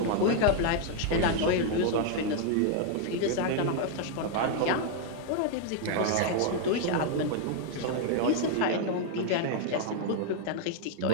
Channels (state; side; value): different; both; correlation 0.00